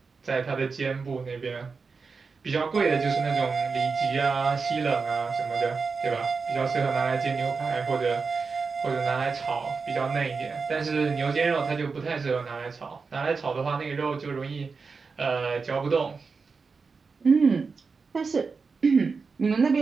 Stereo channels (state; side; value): quieter; left; 4.8 dB